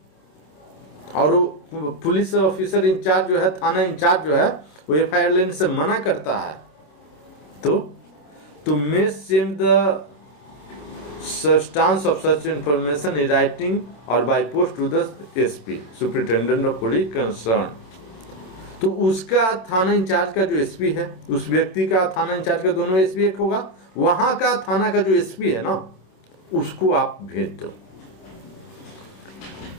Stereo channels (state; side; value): late; right; 26 ms